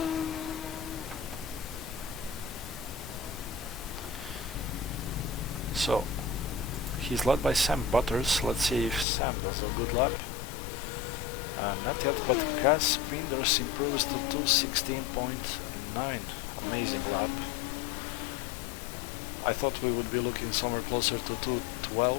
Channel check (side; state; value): right; drops out; at 9.1 s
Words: So he's led by Sam Butters. Let's see if Sam does a good lap. Not yet, but Cas Bienders improves to 2:16.9. Amazing lap. I thought we would be looking somewhere closer to